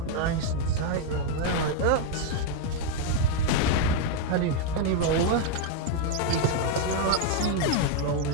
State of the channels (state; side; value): different; both; correlation 0.00